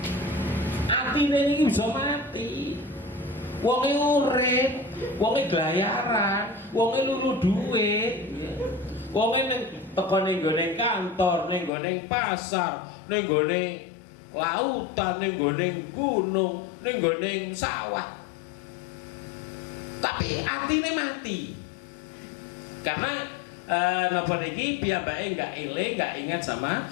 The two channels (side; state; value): right; drops out; at 11.7 s